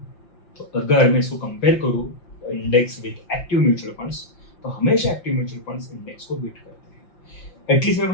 तो अगर मैं इसको कंपेयर करूं index with active mutual funds, तो हमेशा एक्टिव म्यूचुअल फंड्स इंडेक्स को बीट करते हैं। एटलीस्ट मैं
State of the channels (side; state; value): right; late; 5.9 ms